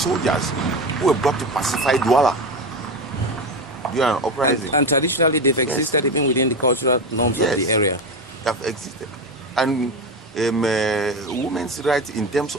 who were brought to pacify Douala during an uprising. And traditionally, they've existed even within the cultural norms of the area. They have existed. And women's rights in terms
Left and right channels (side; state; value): both; normal; correlation 0.20